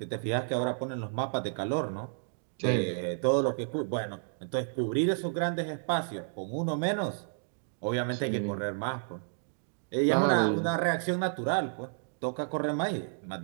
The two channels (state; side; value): silent; left; digital silence